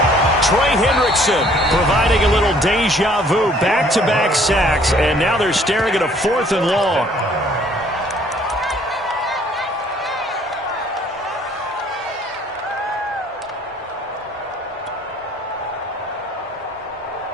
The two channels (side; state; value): both; normal; correlation 0.59